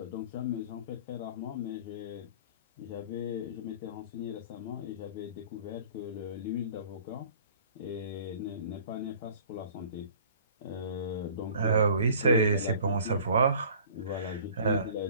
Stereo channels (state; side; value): inverted; both; correlation -0.48